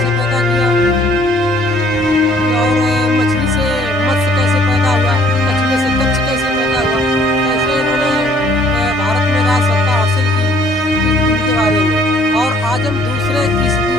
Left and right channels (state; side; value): normal; both; correlation 0.59